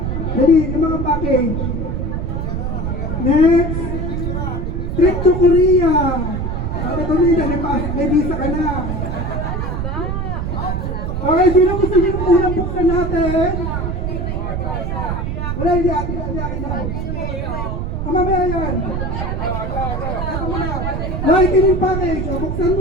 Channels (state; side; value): noise; right; rumble, 2 dB below the sound